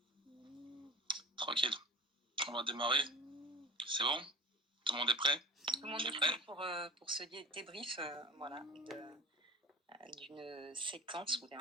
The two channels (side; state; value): both; normal; correlation 0.35